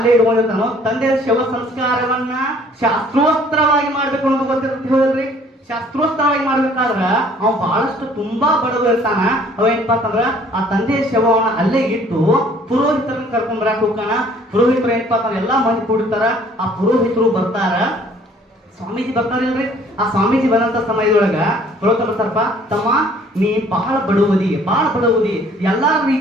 ಇಟ್ಕೊಂಡಿರ್ತಾನೋ. ತಂದೆಯ ಶವ ಸಂಸ್ಕಾರವನ್ನ ಶಾಸ್ತ್ರೋತ್ತರವಾಗಿ ಮಾಡ್ಬೇಕು ಅನ್ನೋದು ಗೊತ್ತಿರುತ್ತೆ. ಹೋದ್ರಿ, ಶಾಸ್ತ್ರೋತ್ತರವಾಗಿ ಮಾಡ್ಬೇಕಾದ್ರ ಅವ ಬಹಳಷ್ಟು ತುಂಬಾ ಬಡವ ಇರ್ತಾನ. ಅವ ಏನಪ್ಪಾ ಅಂತಂದ್ರ ಆ ತಂದೆಯ ಶವವನ್ನ ಅಲ್ಲೇ ಇಟ್ಟು ಪುರೋಹಿತರನ್ನ ಕರ್ಕೊಂಡ್ ಬರಾಕ್ ಹೋಗ್ತಾನ. ಪುರೋಹಿತರು ಏನಪ್ಪಾ ಅಂತಂದ್ರ ಎಲ್ಲಾ ಮಂದಿ ಕೂಡಿರ್ತಾರ. ಆ ಪುರೋಹಿತರು ಬರ್ತಾರ, ಸ್ವಾಮೀಜಿ ಬರ್ತಾರಿಲ್ರಿ. ಆ ಸ್ವಾಮೀಜಿ ಬಂದಂತ ಸಮಯದೊಳಗ ಪುರೋಹಿತರು ಬರ್ತಾರಪ್ಪ, ತಮ್ಮ ನೀ ಬಹಳ ಬಡವದಿ, ಎಲ್ಲಾ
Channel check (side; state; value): both; normal; correlation 0.57